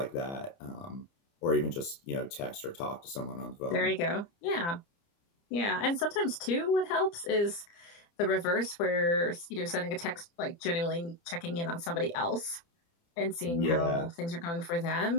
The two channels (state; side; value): late; right; 29 ms